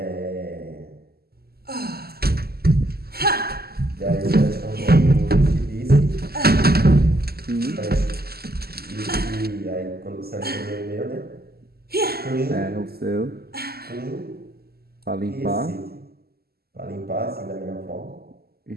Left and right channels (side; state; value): left; late; 0.46 ms